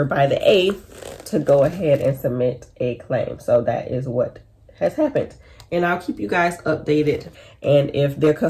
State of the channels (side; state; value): both; identical; correlation 1.00